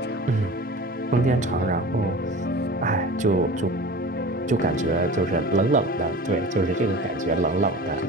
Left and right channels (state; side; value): normal; both; correlation 0.37